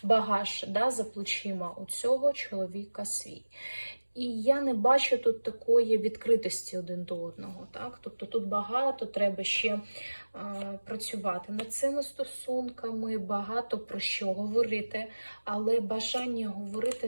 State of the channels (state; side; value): inverted; both; correlation -1.00